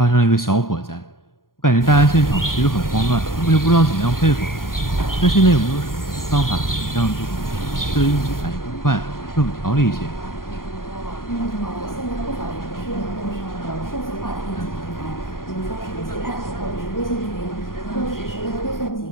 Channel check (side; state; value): right; late; 0.91 ms